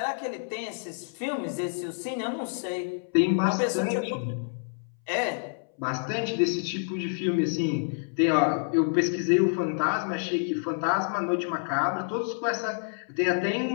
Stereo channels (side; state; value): right; silent; 59 dB below the other